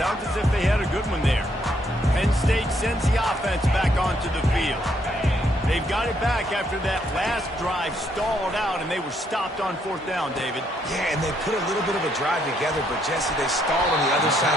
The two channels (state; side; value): normal; both; correlation 0.72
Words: as if they had a good one there. Penn State sends the offense back onto the field. They They've got it back after that last drive stalled out, and they were stopped on 4th down, David. Yeah, and they put a little bit of a drive together, but Jesse, they stalled on the other side